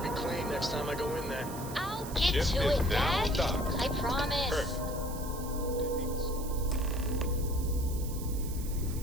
clean next time I go in there. I'll get to it, Dad. I promise. Perfect.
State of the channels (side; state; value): right; noise; hiss, 13 dB below the sound